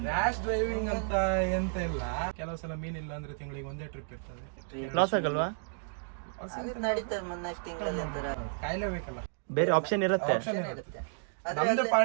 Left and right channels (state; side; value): silent; left; digital silence